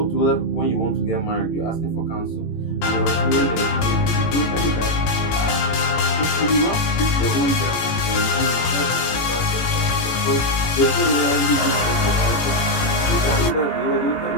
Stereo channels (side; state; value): right; late; 18 ms